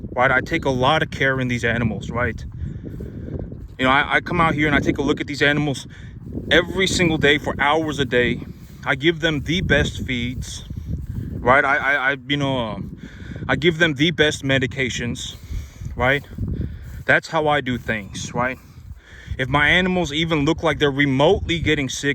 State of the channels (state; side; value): identical; both; correlation 1.00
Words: Right? I take a lot of care in these animals. Right? I come out here and I take a look at these animals every single day for hours a day. I give them the best feeds. Right? I give them the best medications. Right? That's how I do things, right? If my animals even look like they're remotely getting